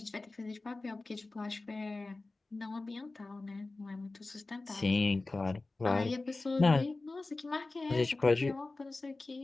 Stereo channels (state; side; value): quieter; right; 3.3 dB